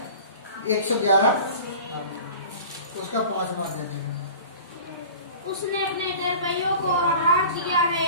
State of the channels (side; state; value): both; inverted; correlation -0.40